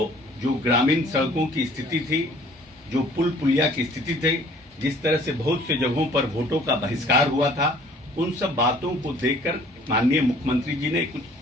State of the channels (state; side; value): normal; both; correlation 0.54